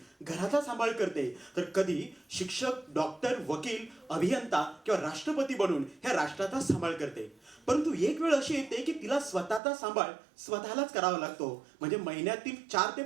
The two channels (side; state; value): left; drops out; at 9.6 s